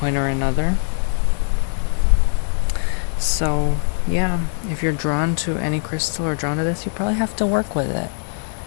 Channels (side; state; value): right; silent; digital silence